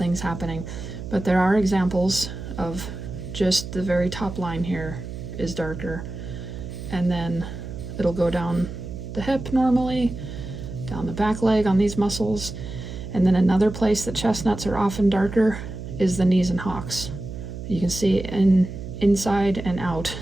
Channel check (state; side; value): noise; right; hum, 9 dB below the sound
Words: happening. But there are examples of just the very top line here is darker, and then it'll go down the hip normally, down the back leg on these muscles. And then another place that chestnuts are often darker is the knees and hocks. You can see inside and out.